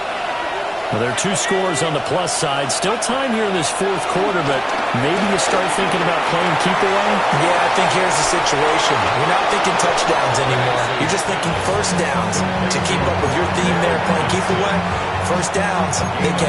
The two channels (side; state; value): both; identical; correlation 1.00